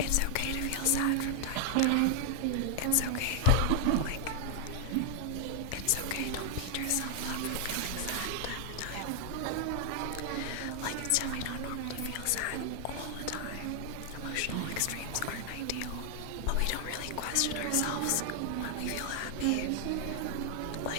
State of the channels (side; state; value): both; different; correlation 0.00